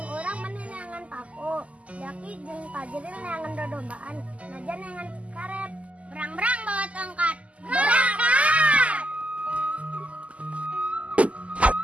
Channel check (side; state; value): left; late; 0.066 ms